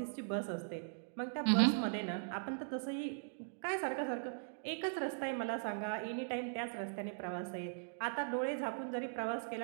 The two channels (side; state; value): left; silent; digital silence